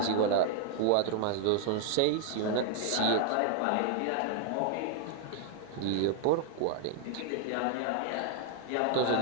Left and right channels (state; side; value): different; both; correlation 0.00